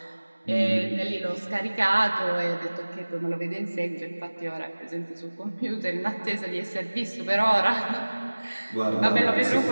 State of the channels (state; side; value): inverted; both; correlation -1.00